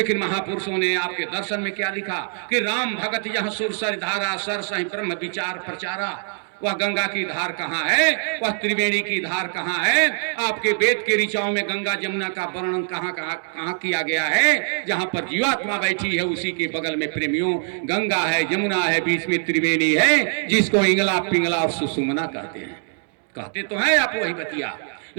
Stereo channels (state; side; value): silent; left; digital silence